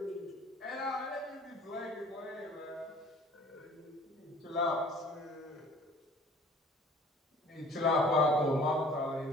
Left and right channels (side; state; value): both; normal; correlation 0.51